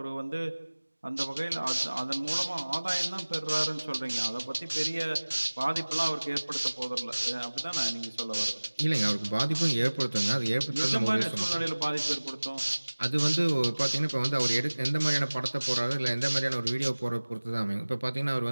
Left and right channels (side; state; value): both; inverted; correlation -1.00